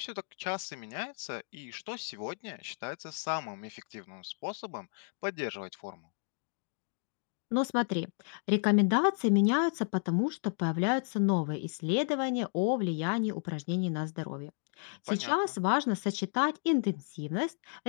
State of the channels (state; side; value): silent; right; 56 dB below the other